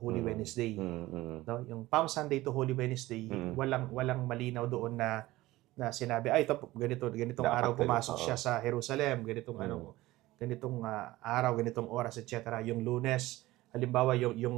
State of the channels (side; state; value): left; quieter; 17.9 dB